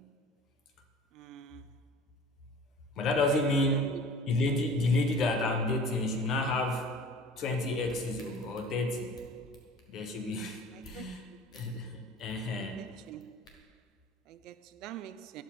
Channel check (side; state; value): both; normal; correlation 0.43